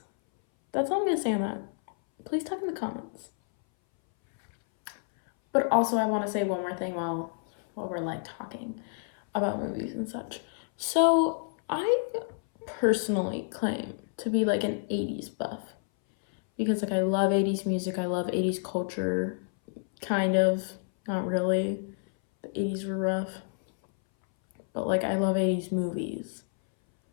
that's all I'm gonna say on that. please talk in the comments. But also, I want to say one more thing while we're like talking about movies and such. So I personally claim to be like an 80s buff because like I love 80s music, I love 80s culture, kind of, not really. The 80s were rough. But like I love 80s movies.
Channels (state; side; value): silent; right; 59 dB below the other